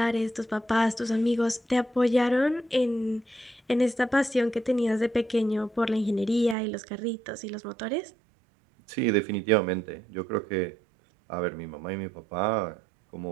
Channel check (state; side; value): drops out; left; at 6.6 s